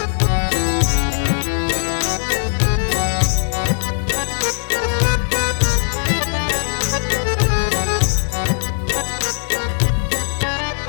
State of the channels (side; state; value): right; silent; 67 dB below the other